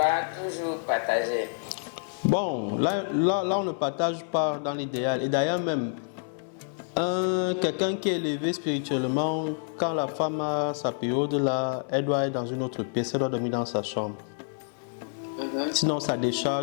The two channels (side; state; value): right; silent; 59 dB below the other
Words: toujours partager? Bon, là on ne partage pas dans l'idéal. Et d'ailleurs même, quelqu'un qui est élevé spirituellement, quand la femme a sa période là, elle doit être dans une autre pièce, elle doit dormir dans sa chambre. Sinon ça